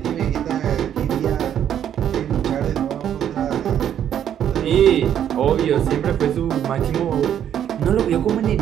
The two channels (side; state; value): left; quieter; 9.8 dB